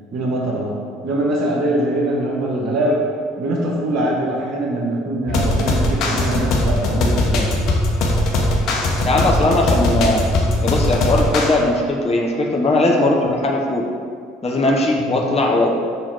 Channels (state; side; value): normal; both; correlation 0.61